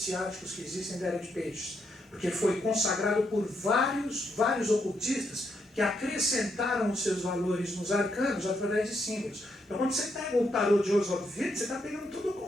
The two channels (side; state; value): both; normal; correlation 0.78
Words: que existem da Era de Peixes, porque foi consagrado por vários ocultistas que acrescentaram os seus valores nos arcanos através de símbolos. Então quando você pega o tarô de Oswald Wirth, você está pegando todo o